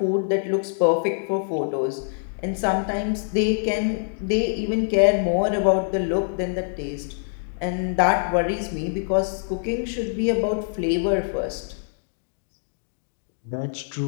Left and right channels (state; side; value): silent; right; digital silence